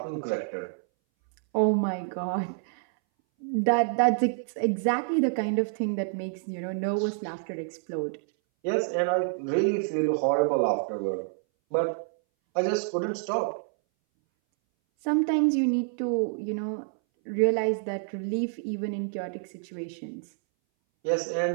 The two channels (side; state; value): left; silent; 59 dB below the other